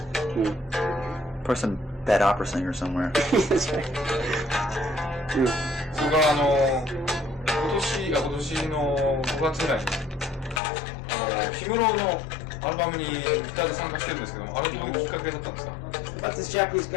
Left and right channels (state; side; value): drops out; right; at 10.6 s